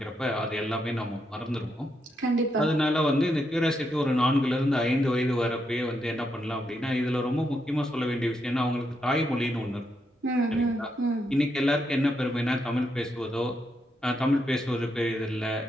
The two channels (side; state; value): both; normal; correlation 0.81